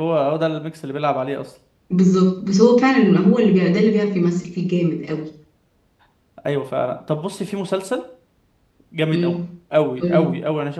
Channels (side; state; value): both; identical; correlation 1.00